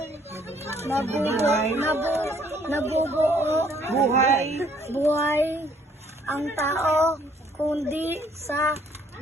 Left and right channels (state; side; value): normal; both; correlation 0.63